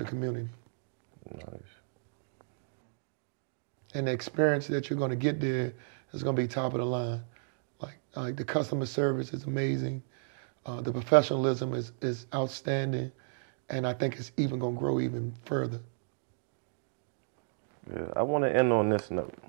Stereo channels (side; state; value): left; silent; digital silence